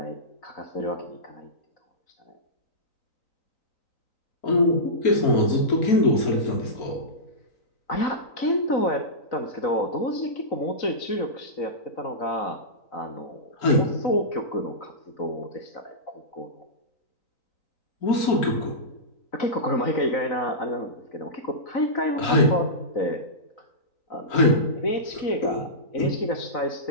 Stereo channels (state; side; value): late; right; 3.9 ms